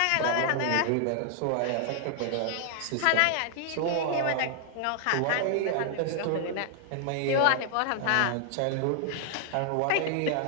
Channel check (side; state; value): both; different; correlation 0.00